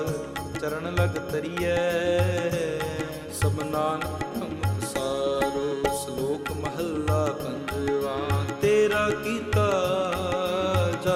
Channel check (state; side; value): identical; both; correlation 1.00